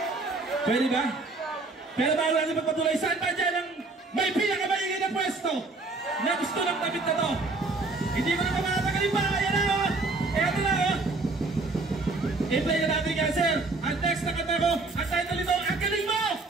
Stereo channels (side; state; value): left; quieter; 3.5 dB